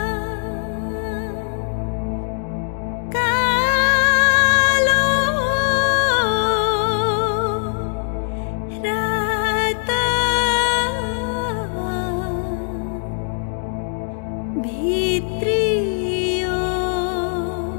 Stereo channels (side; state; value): right; silent; digital silence